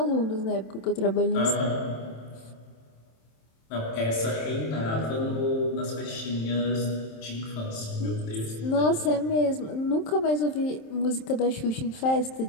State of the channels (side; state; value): right; late; 27 ms